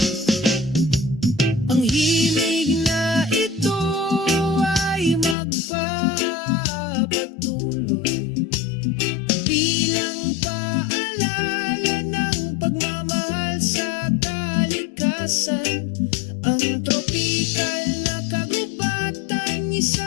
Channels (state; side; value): drops out; right; at 5.4 s